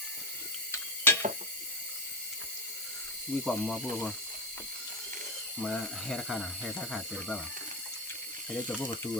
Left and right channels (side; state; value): both; normal; correlation 0.11